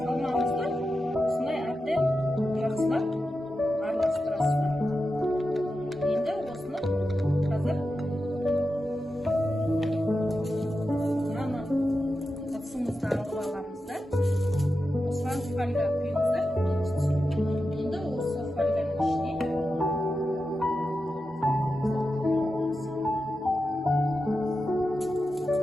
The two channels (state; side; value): normal; both; correlation 0.90